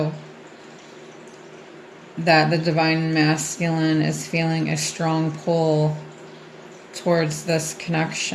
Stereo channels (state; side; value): identical; both; correlation 1.00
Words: That the divine masculine is feeling a strong pull towards this